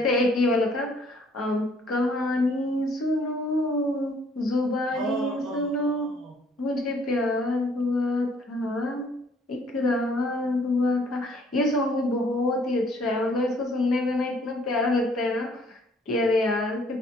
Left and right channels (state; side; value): normal; both; correlation 0.62